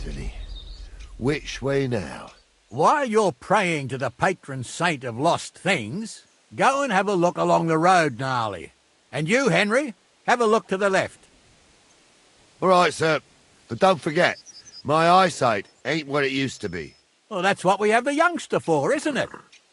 Which way now? While you're praying to the patron saint of lost things, go and have a look along the road, Gnarly. And you, Henry, have a look to the left. All right, sir. But don't forget, my eyesight ain't what it used to be. Well, that's what we have the youngster for, isn't it?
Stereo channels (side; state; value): both; identical; correlation 1.00